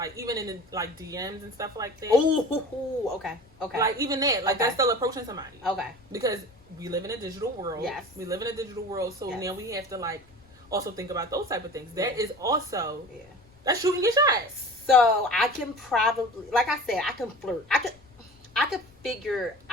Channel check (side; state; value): left; noise; rumble, 29 dB below the sound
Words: even in the like DMs and stuff like that. Oh, okay. Like even that, like that's still approaching somebody. Okay. Because we live in a digital world. Yes. We live in a digital world, so now we have to like also think about those type of things. That is also that's shooting your shot. So I can probably, like I said, I can flirt. I could figure